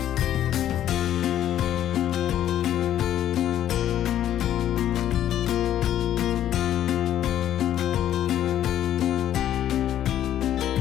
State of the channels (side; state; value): right; quieter; 11.3 dB